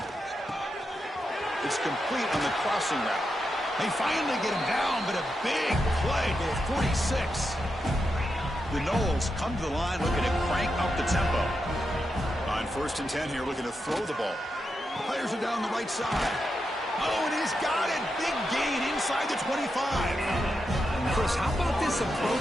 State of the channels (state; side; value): normal; both; correlation 0.86